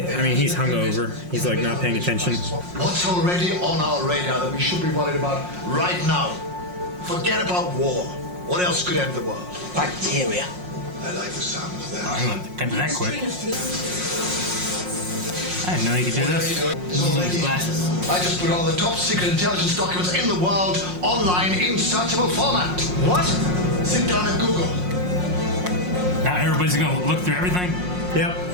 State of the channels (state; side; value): late; left; 5.6 ms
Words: mean, he's hungover. He's like not paying attention. What's already on our radar that we should be worried about right now? Forget about war. What else could end the world? Bacteria. I like the sound of that. I'm gonna get to that quick. I didn't know you could do this. Glasses. I just put all the top secret intelligence documents in the world online in searchable format. What? Sit down and Google. Now everybody's gonna look through everything. Yep.